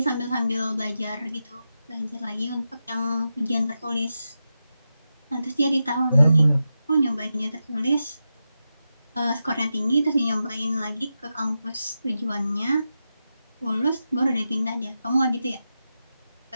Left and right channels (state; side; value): inverted; both; correlation -0.90